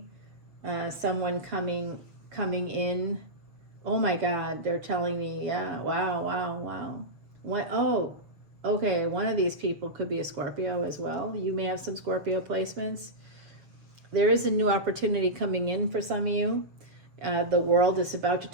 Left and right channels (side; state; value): left; late; 6.8 ms